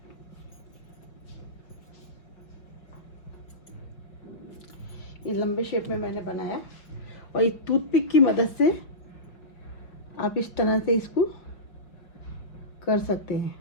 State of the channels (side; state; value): right; late; 5.3 ms